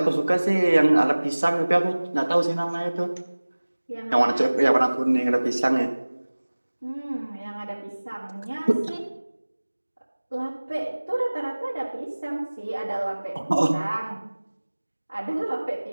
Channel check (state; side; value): inverted; both; correlation -1.00